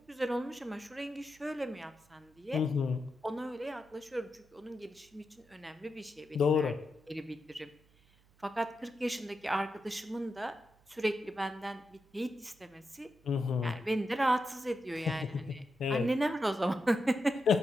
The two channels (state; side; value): noise; right; hum, 30 dB below the sound